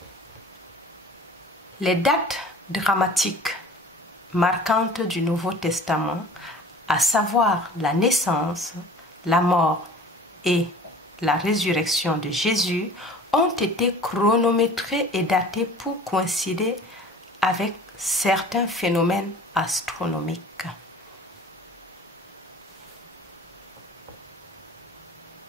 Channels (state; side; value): normal; both; correlation 0.45